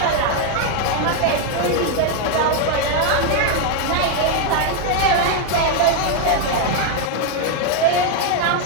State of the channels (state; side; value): different; both; correlation 0.00